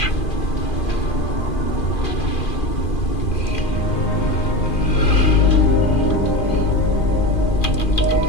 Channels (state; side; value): late; right; 2.4 ms